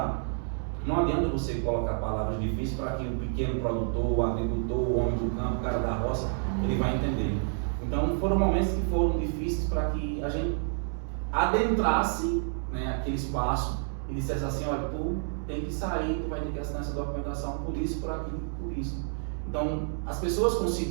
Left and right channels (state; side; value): silent; left; 58 dB below the other